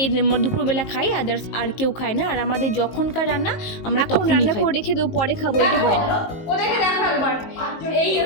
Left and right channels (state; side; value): late; right; 19 ms